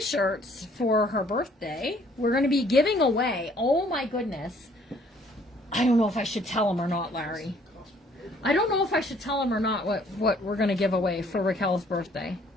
for her birthday. We're going to be giving away. Oh my goodness. I don't know if I should tell them or not, Larry. I don't know if I should tell them or not what we're going to give away for Raquel's birthday.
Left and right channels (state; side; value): normal; both; correlation 0.61